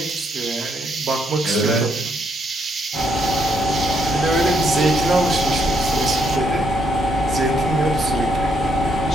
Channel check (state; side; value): normal; both; correlation 0.74